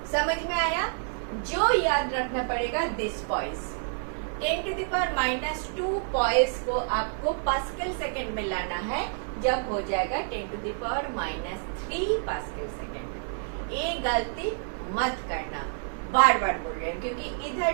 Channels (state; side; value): silent; left; 59 dB below the other